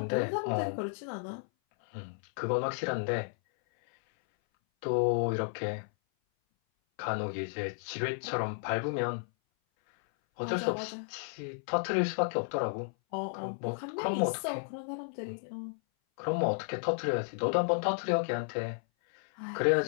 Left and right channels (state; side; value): silent; right; 56 dB below the other